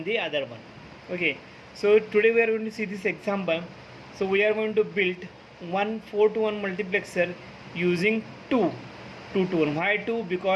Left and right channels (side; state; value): both; identical; correlation 1.00